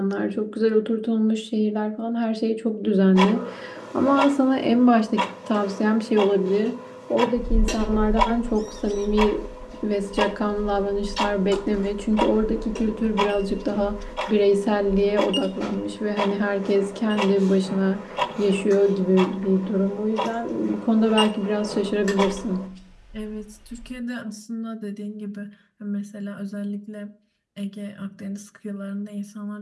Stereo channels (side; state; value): both; identical; correlation 1.00